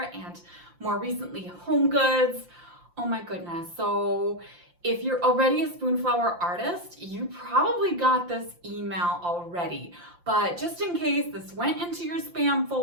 and more recently home goods. Oh my goodness. So if you're already a Spoonflower artist, you probably got this email already. But just in case this went into your spam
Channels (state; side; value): late; left; 5.7 ms